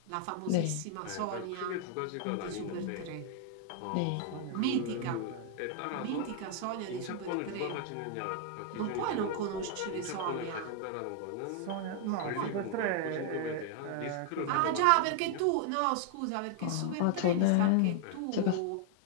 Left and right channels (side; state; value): both; different; correlation 0.00